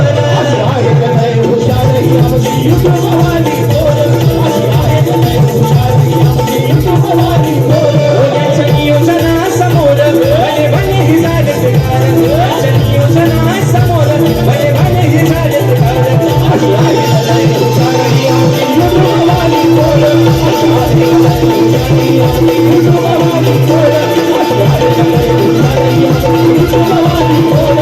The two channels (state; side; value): identical; both; correlation 1.00